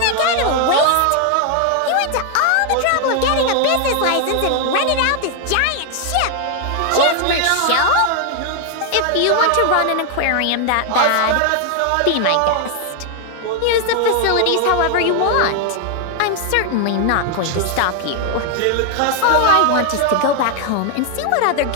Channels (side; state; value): both; different; correlation 0.00